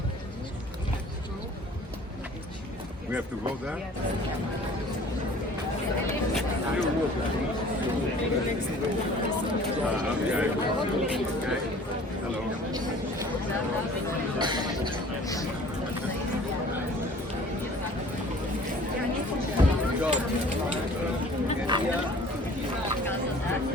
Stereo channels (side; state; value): both; normal; correlation 0.49